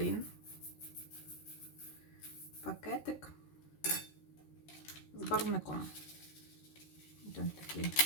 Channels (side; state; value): right; late; 13 ms